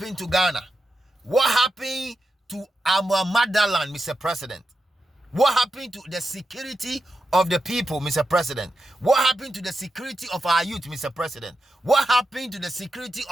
to Ghana? What happened to our motherland, Mr. President? What happened to the security of the people, Mr. President? What happened to the security of our youth, Mr. President? What happened to the security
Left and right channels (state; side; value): normal; both; correlation 0.88